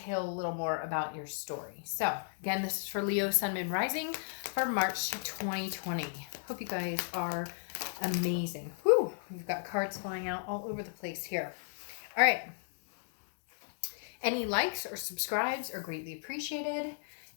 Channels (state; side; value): silent; right; digital silence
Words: a little more about your story. So, again, this is for Leo, Sun, Moon, Rising for March 2020. Hope you guys are amazing. Whew, we've got cards flying out all over the place here. All right. Any likes or subscribes are greatly appreciated.